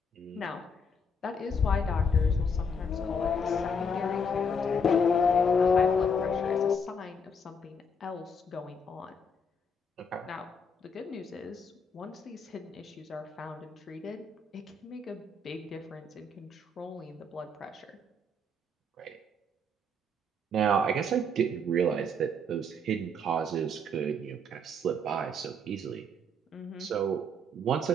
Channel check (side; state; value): both; normal; correlation 0.71